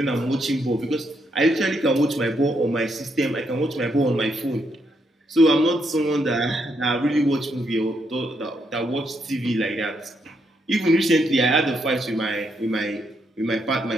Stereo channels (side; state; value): both; normal; correlation 0.77